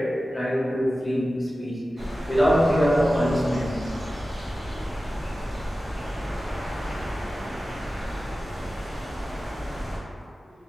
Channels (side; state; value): both; normal; correlation 0.95